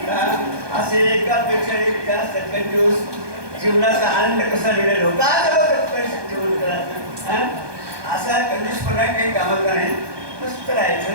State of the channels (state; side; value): late; left; 1.2 ms